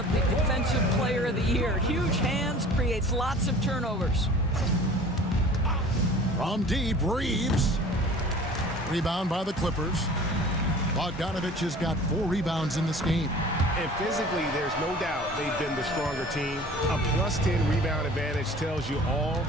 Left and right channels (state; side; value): normal; both; correlation 0.44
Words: the Defensive Player of the Year. Huge hands, creates lots of turnovers. From deep, Reeves. Rebound by the Clippers. Bogdanovich has got 4 rebounds in this game. And physically, there's no doubt they've been the stronger team. A +10 rebound advantage tells you all